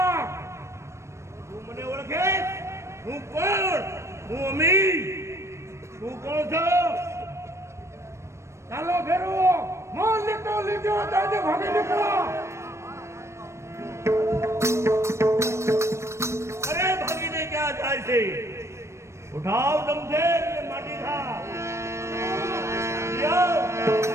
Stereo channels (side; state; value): left; late; 0.13 ms